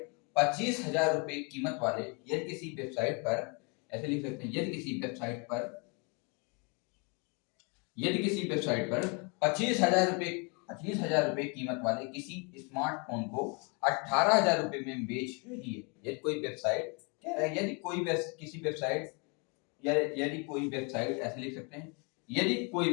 25,000 रुपए कीमत वाले, यदि किसी वेबसाइट पर, ऐसे लिख सकते हैं, यदि किसी वेबसाइट पर, यदि किसी वेबसाइट पर 25,000 रुपए कीमत वाले किसी स्मार्टफोन को 18,000 रुपए में बेच रही है, यदि कोई वेबसाइट, कह रहा है यदि कोई किसी वेबसाइट, या यदि कोई वेबसाइट, ऐसे लिख सकते हैं, यदि कोई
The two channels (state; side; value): quieter; right; 33.0 dB